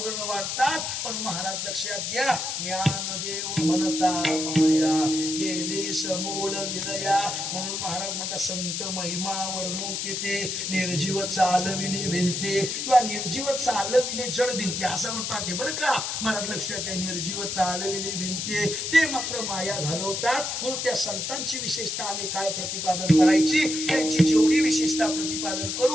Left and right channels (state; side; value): noise; left; hiss, 3 dB below the sound